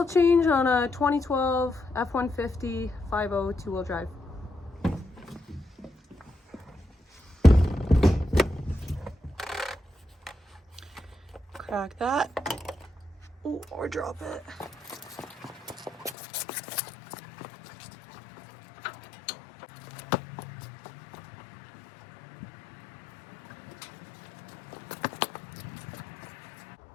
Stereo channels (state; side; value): drops out; right; at 16.2 s